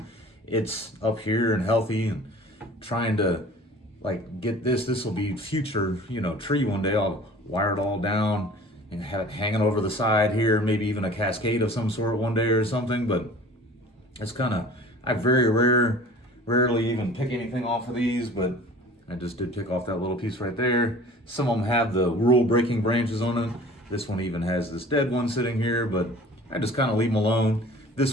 It's up here and healthy, and trying to like get this. This will be future, tree one day. I'll wire it all down and have it hanging over the side here, maybe even a cascade of some sort one day or something. But it's kind of, I rarely even pick anything off of these, but I just did pick off that little piece right there. Some of them have the rule breaking branches on it. This one even has this dead one sitting here, but I just kind of leave them alone.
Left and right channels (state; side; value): normal; both; correlation 0.45